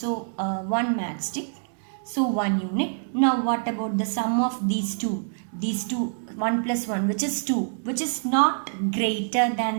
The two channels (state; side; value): silent; left; digital silence